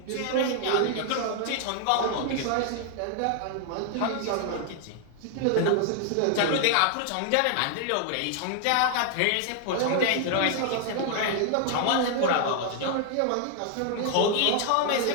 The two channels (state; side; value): different; both; correlation 0.00